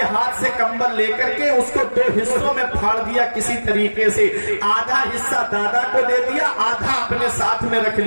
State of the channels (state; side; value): inverted; both; correlation -1.00